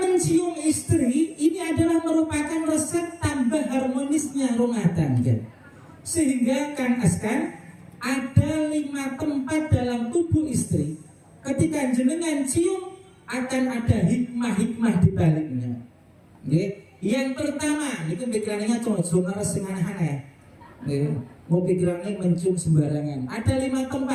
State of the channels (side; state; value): both; identical; correlation 1.00